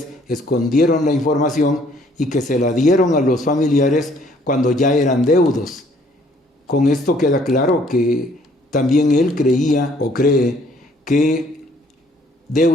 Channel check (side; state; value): both; normal; correlation 0.62